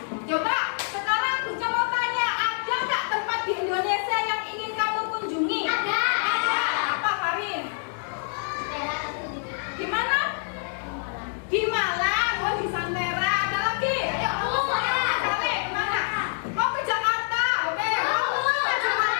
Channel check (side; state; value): right; silent; 61 dB below the other